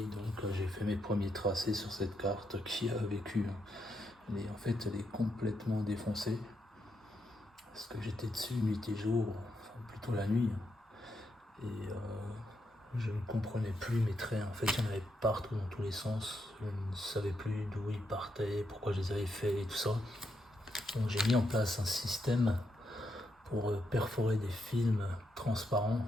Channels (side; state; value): both; normal; correlation 0.81